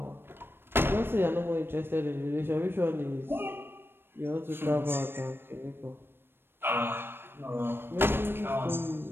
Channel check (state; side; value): late; left; 0.10 ms